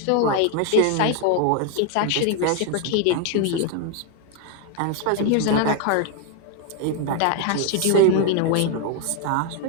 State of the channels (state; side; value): different; both; correlation 0.01